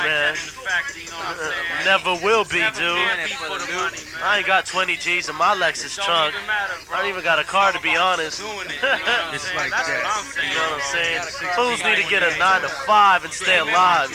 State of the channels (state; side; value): identical; both; correlation 1.00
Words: man. that in the factory, you know what I'm saying? Never will be, Never dude. can be for the money, I man. ain't got 20 G's in my Lexus Don't trunk. even matter, bro. I don't even got a car to be honest. Doing it, you know what I'm It's saying? like That's that. what I'm saying. You know what I'm saying? Bro. Fools need to get a 9 to 5 and stay alive,